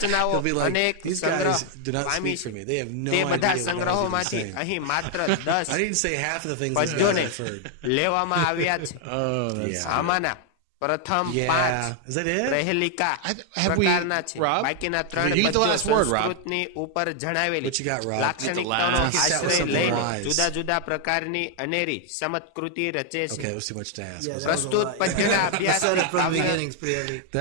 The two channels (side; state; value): both; different; correlation 0.00